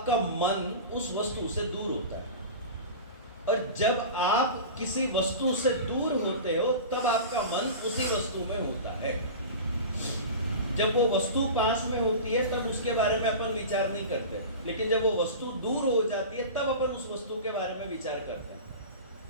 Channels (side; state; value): both; inverted; correlation -0.31